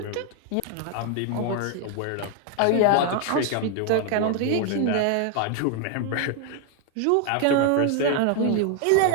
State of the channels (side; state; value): both; different; correlation 0.01